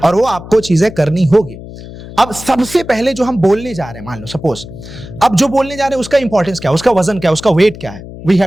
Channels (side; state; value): left; noise; hum, 14 dB below the sound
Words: और वो आपको चीजें करनी होगी. अब सबसे पहले जो हम बोलने जा रहे हैं, मान लो सपोज अब जो बोलने जा रहे हैं उसका इंपॉर्टेंस क्या है, उसका वजन क्या है, उसका वेट क्या है, वी